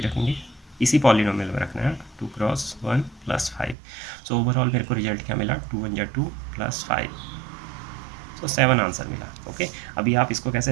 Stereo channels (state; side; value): drops out; left; at 3.8 s